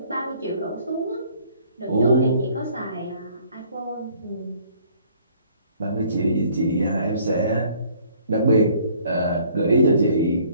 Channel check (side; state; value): both; inverted; correlation -0.59